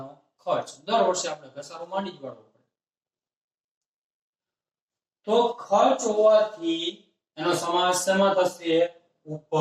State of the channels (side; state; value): both; identical; correlation 1.00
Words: ખર્ચ. દર વર્ષે આપણે ઘસારો માંડી જ પડવો પડે. તો ખર્ચ હોવાથી એનો સમાવેશ શેમાં થશે?